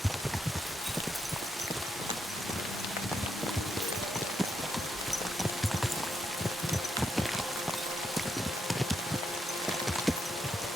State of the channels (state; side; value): normal; both; correlation 0.80